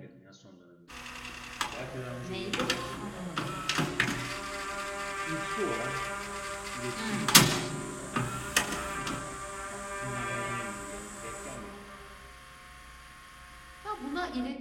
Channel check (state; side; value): identical; both; correlation 1.00